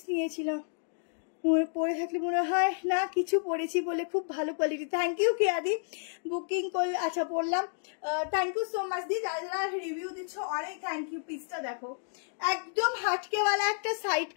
নিয়েছিলাম, পরে থাকলে মনে হয় না কিছু পরেছি বলে, খুব ভালো কোয়ালিটি। থ্যাংক ইউ কেয়াদি, বুকিং করলে। আচ্ছা পড়লাম, থ্যাংক ইউ সো মাচ দি, যারা যারা রিভিউ দিচ্ছ অনেক থ্যাংক ইউ। পিসটা দেখো, একদম হাটকেওয়ালা একটা সাইড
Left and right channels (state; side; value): silent; right; digital silence